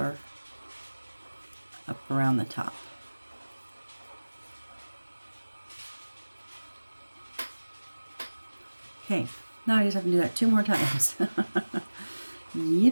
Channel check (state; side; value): inverted; both; correlation -1.00